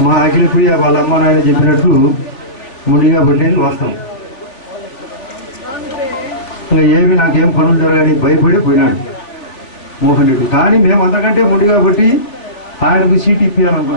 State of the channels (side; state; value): right; late; 3.5 ms